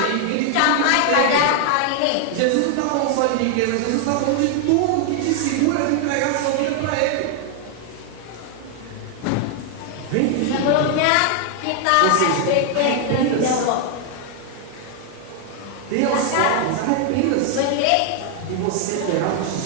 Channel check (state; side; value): different; both; correlation 0.00